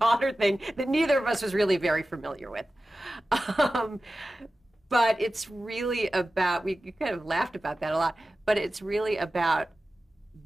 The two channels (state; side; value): normal; both; correlation 0.95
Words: thing that neither of us was really very familiar with. But it's really about, we kind of laughed about that a lot, but it's really about